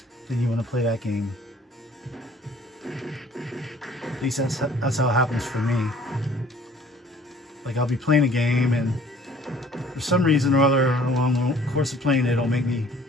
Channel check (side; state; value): both; normal; correlation 0.54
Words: then you want to play that game. At least that's how it happens for me. Like, I'll be playing a game, and for some reason or other, along the course of playing it, it'll make me